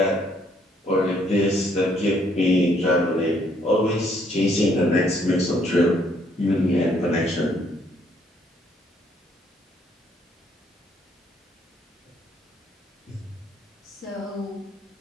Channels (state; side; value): normal; both; correlation 0.68